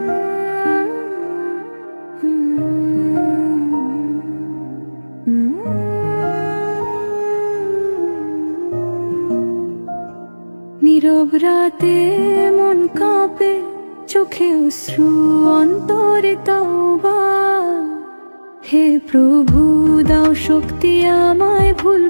নীরব রাতে মন কাঁপে, চোখে অশ্রু অন্তরে তওবা। হে প্রভু দাও শক্তি আমায়, ভুল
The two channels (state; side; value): inverted; both; correlation -1.00